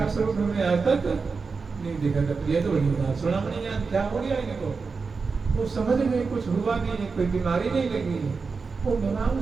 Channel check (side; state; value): left; quieter; 4.7 dB